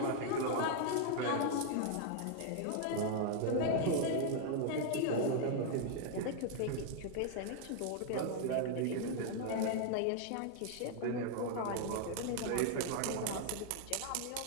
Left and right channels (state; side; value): different; both; correlation -0.01